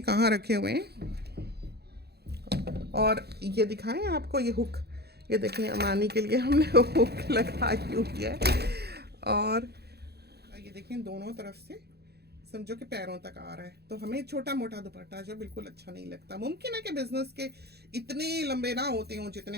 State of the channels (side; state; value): left; late; 0.47 ms